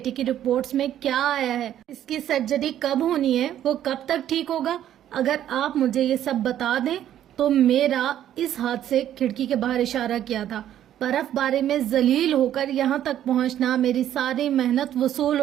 کی رپورٹس میں کیا آیا ہے؟ اس کی سرجری کب ہونی ہے؟ وہ کب تک ٹھیک ہوگا؟ اگر آپ مجھے یہ سب بتا دیں تو میرا اس ہاتھ سے کھڑکی کے باہر اشارہ کیا تھا. برف باری میں ذلیل ہو کر یہاں تک پہنچنا, میری ساری محنت وصول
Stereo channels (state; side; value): quieter; left; 11.3 dB